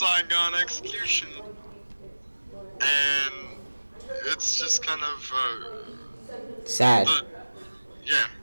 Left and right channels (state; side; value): inverted; both; correlation -1.00